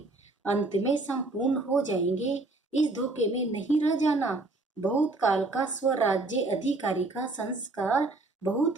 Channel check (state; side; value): quieter; left; 3.1 dB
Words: अंत में संपूर्ण हो जाएंगे। इस धोखे में नहीं रह जाना बहुत काल का स्वराज्य अधिकारी का संस्कार बहुत